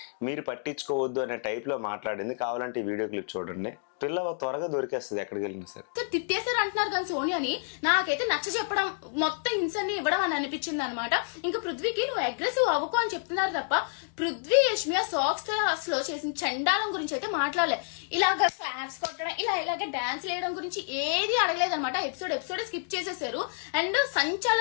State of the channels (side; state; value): right; silent; digital silence